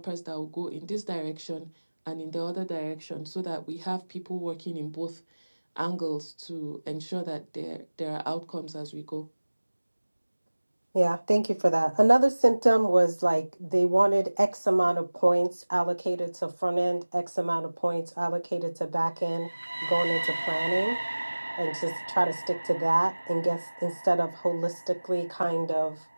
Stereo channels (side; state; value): both; inverted; correlation -1.00